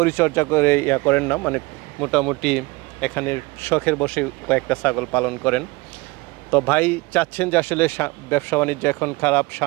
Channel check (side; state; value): left; quieter; 23.6 dB